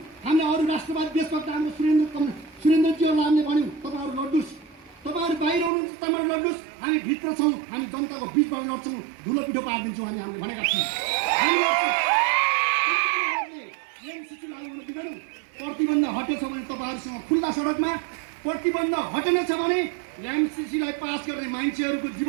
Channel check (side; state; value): left; drops out; at 5.7 s